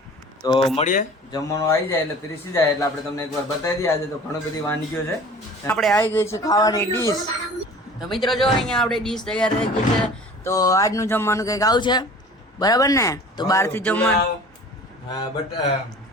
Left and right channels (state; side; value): normal; both; correlation 0.44